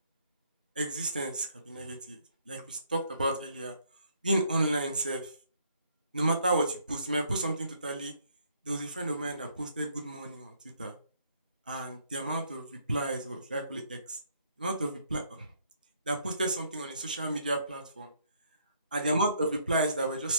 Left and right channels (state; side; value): inverted; both; correlation -0.68